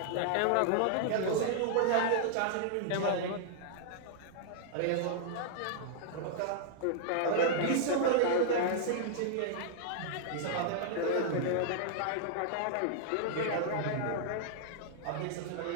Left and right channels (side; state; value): both; different; correlation -0.01